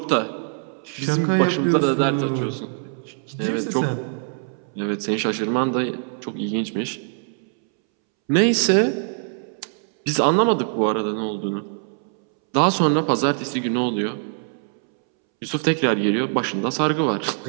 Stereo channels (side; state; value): left; silent; 64 dB below the other